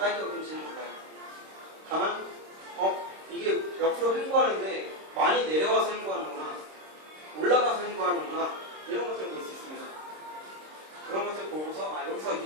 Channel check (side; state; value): left; late; 26 ms